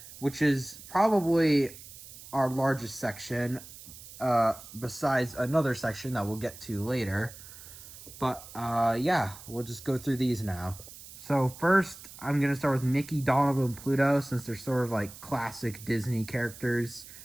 which is probably our largest section, besides another section that we'll get to later. But yeah, we'll just go through these now. So first, I'm going to start with Mickey, Donald, and Pluto, since they're sort of like classic Disney characters.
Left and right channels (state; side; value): noise; right; hiss, 16 dB below the sound